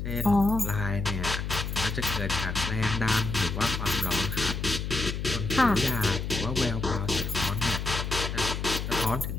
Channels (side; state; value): left; noise; hum, 4 dB below the sound